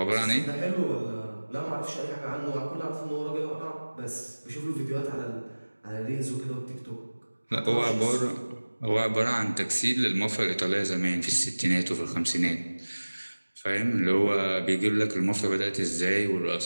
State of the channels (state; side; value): inverted; both; correlation -1.00